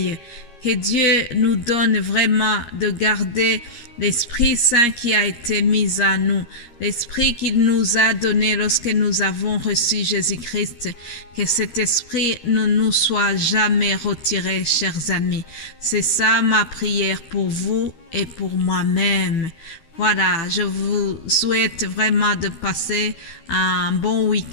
Que Dieu nous donne vraiment de garder l'Esprit Saint qui a été mis en nous, l'Esprit qu'il nous a donné lorsque nous avons reçu Jésus-Christ. Que cet Esprit ne nous soit jamais retiré, chers amis. C'est ça ma prière pour vous et pour moi-même. Voilà, je vous souhaite vraiment de passer un bon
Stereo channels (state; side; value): late; right; 13 ms